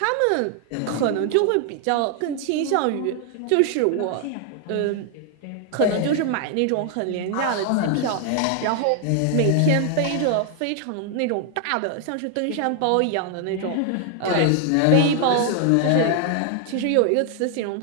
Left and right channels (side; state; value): both; different; correlation 0.00